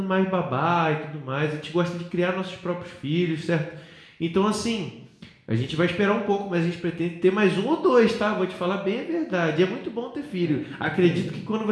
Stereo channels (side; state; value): both; identical; correlation 1.00